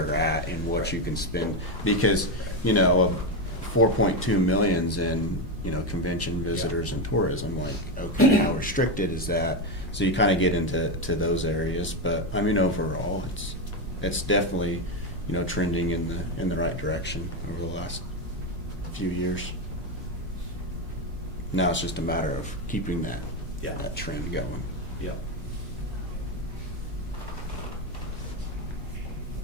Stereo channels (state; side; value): normal; both; correlation 0.10